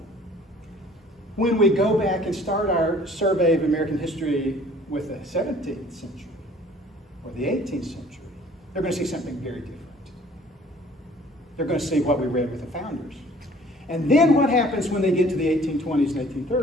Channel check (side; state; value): both; normal; correlation 0.53